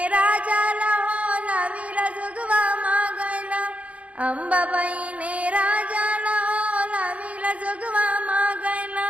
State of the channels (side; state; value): left; late; 0.065 ms